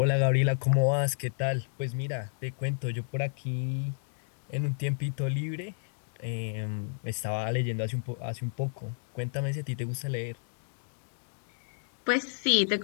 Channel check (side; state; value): right; silent; digital silence